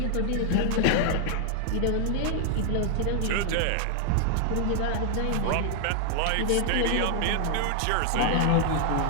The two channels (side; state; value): both; different; correlation 0.00